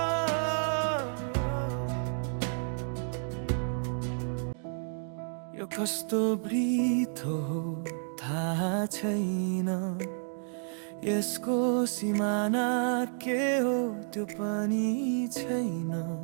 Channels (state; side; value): silent; left; 57 dB below the other